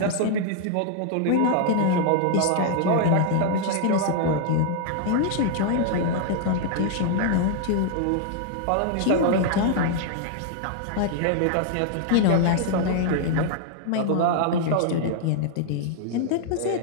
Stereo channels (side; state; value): both; different; correlation 0.00